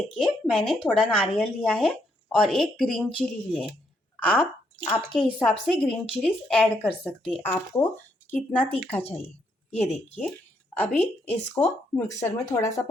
मैंने थोड़ा नारियल लिया है और एक ग्रीन चिली ली है। आप आपके हिसाब से ग्रीन चिलीज ऐड कर सकते हैं, आपको कितना तीखा चाहिए। ये देखिए, अभी इसको मिक्सर में थोड़ा सा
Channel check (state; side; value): normal; both; correlation 0.75